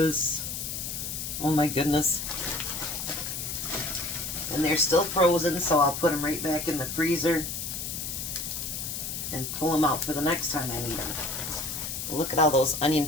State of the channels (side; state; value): left; noise; hiss, 5 dB below the sound